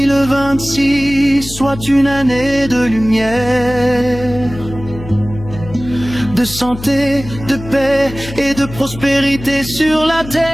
soit une année de lumière, de santé, de paix et de prospérité sur la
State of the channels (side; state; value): left; noise; hum, 12 dB below the sound